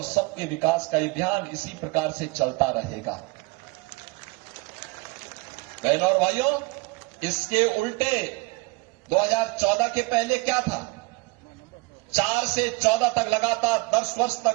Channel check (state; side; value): quieter; left; 25.7 dB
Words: सबके विकास का अभियान इसी प्रकार से चलता रहेगा। बहनों और भाइयों, इसके उल्टे 2014 के पहले क्या था? 4 से 14 तक लगातार 10 वर्ष